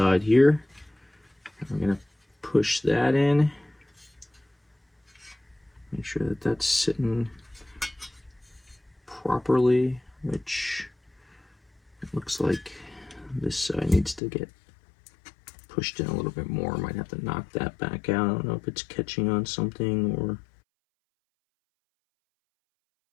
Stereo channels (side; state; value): right; drops out; at 14.2 s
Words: here. I'm going to push that in. Make sure that that's sitting properly, which it looks like this side needs to get pushed in a little bit more. Might have to knock that back out. I don't know if it's catching on something or...